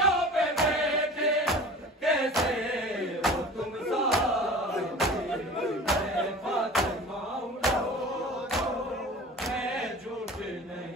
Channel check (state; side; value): normal; both; correlation 0.39